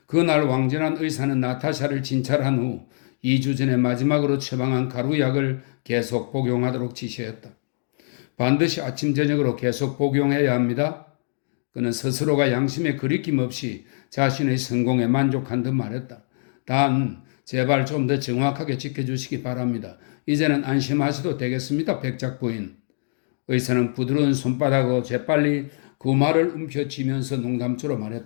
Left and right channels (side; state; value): right; silent; digital silence